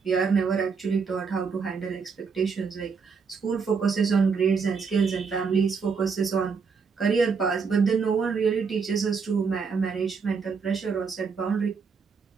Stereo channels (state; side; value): quieter; left; 5.5 dB